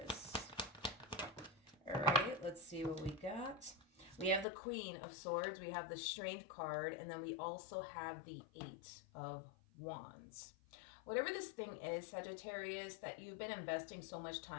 All right, let's see what we got. We have the Queen of Swords, we have the Strength card, and then we also have the Eight of Wands. Whatever this thing is, Sagittarius, that you've been investing so much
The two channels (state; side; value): drops out; right; at 4.5 s